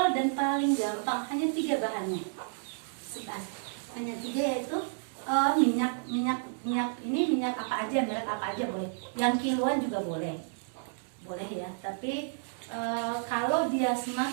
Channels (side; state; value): left; silent; digital silence